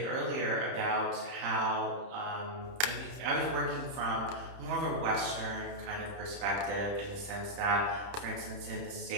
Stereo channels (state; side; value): late; left; 30 ms